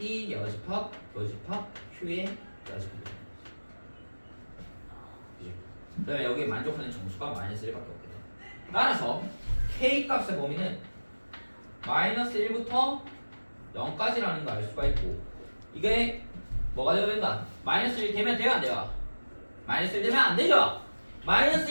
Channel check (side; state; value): both; inverted; correlation -1.00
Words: 여집합 교집합 Q의 여집합. 그죠? 그다음에 여기에 만족하는 정수가 마이너스 1밖에 없게 돼. 따라서 K 값의 범위는 마이너스 1부터 0까지라는 거 알 수가 있고, 이게 뭐가 되어야 된다? 마이너스 1 되면 돼요 안 돼요? 마이너스 1 되면 안 되죠? 마이너스